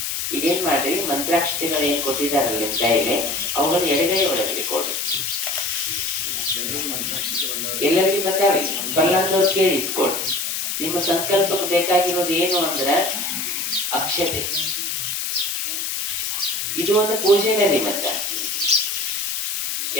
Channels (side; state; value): left; noise; hiss, 2 dB below the sound